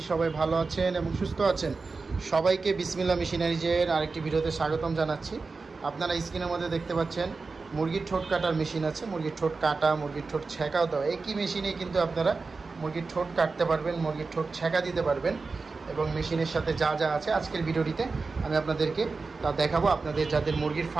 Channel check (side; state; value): left; quieter; 4.2 dB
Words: সবাই ভালো আছেন এবং সুস্থ আছেন। সবাইকে বিসমিল্লাহ মেশিনারিজের আরেকটি ভিডিওতে স্বাগতম জানাচ্ছি। আপনারা স্ক্রিনের মধ্যে দেখতে পাচ্ছেন মুরগির ঠোঁট কাটার মেশিন আছে। মুরগির ঠোঁট কাটা, মুরগির ঠোঁট ছেঁকাও দেওয়া, একই মেশিনে কিন্তু আপনারা মুরগির ঠোঁট কাটতে পারবেন, মুরগির ঠোঁট ছেঁকা দিতে পারবেন। এবং মেশিনের সাথে যা যা আছে আজকের ভিডিওটিতে আমি আপনাদেরকে তা দেখাবো। আপনাদের যাদের মুরগির